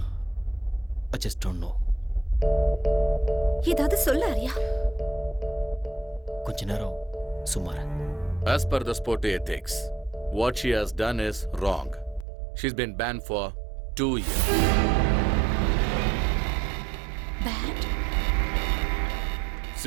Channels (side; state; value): left; drops out; at 12.2 s